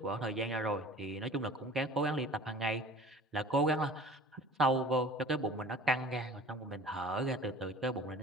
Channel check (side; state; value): both; normal; correlation 0.43